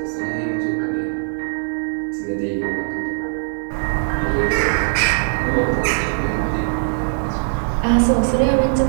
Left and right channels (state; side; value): silent; left; digital silence